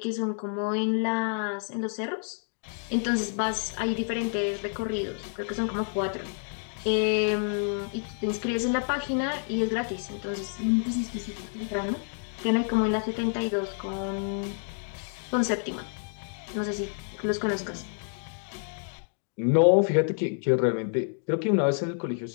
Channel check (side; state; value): right; silent; 56 dB below the other